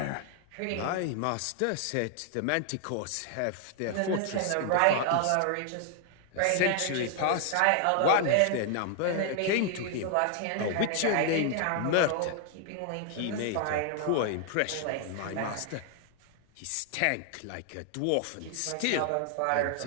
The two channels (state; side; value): different; both; correlation 0.00